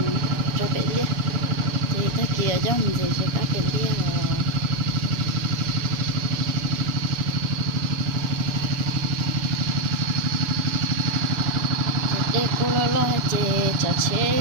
cho phải lia thì ta kia cho mình gì cho cá phải lia để cô lo chế cho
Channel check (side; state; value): left; late; 7.2 ms